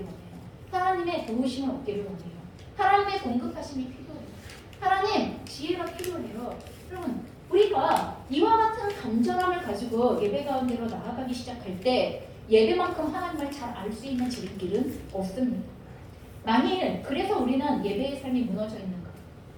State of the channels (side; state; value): both; identical; correlation 1.00